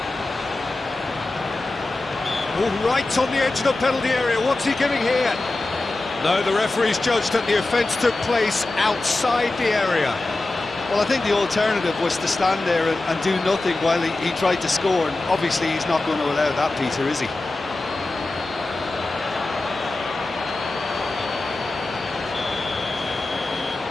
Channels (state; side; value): quieter; right; 3.0 dB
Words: Oh, right on the edge of the penalty area. What's he giving here? No, the referee's judged that the offence took place outside the area. Well, I think the alternative was to stand there and do nothing while he tried to score, and obviously he's not going to allow that, Peter, is he?